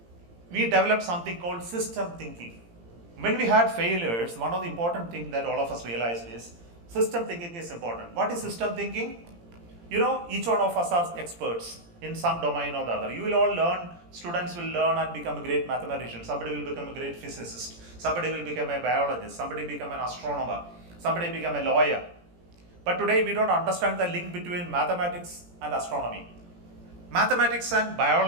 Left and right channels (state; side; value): late; left; 17 ms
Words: we developed something called system thinking. When we had failures, one of the important things that all of us realized is system thinking is important. What is system thinking? each one of us are experts in some domain or the other. You will all learn, students will learn and become a great mathematician. Somebody will become a great physicist. Somebody will become a biologist. Somebody become an astronomer. Somebody become a lawyer. But today we don't understand the link between mathematics and astronomy. Mathematics and